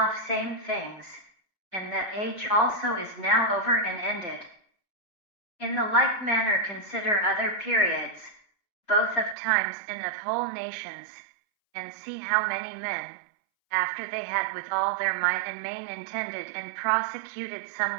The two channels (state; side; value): drops out; left; at 9.3 s